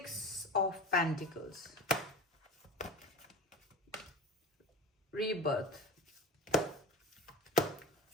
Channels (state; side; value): normal; both; correlation 0.32